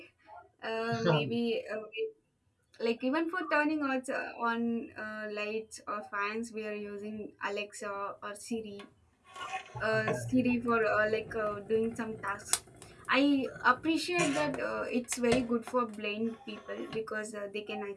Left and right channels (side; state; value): both; identical; correlation 1.00